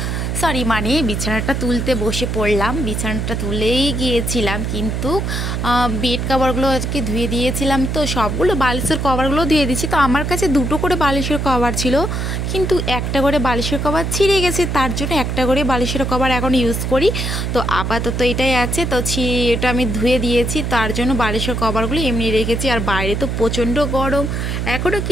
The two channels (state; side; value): noise; right; hum, 1 dB below the sound